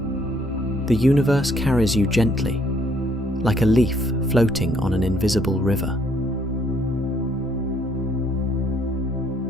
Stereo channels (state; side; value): normal; both; correlation 0.66